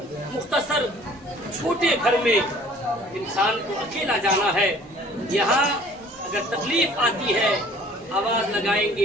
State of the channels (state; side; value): normal; both; correlation 0.52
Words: मुख्तसर छोटे घर में इंसान को अकेला जाना है। यहाँ अगर तकलीफ आती है, आवाज